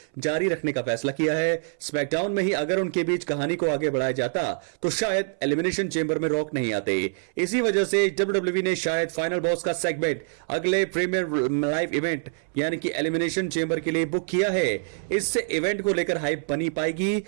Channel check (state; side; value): silent; left; 61 dB below the other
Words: जारी रखने का फैसला किया है। स्मैकडाउन में ही अगर उनके बीच कहानी को आगे बढ़ाया जाता तो शायद एलिमिनेशन चेंबर में रॉक नहीं आते। इसी वजह से WWE ने शायद फाइनल बॉस का सेगमेंट अगले प्रीमियर लाइव इवेंट यानी कि एलिमिनेशन चेंबर के लिए बुक किया है। इससे इवेंट को लेकर हाइप बनी पाएगी